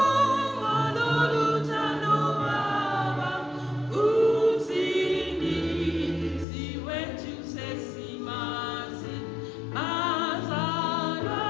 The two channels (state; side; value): drops out; right; at 6.5 s